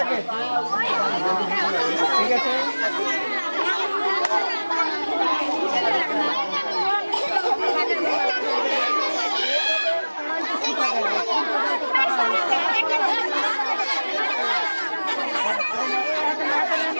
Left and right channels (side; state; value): both; inverted; correlation -1.00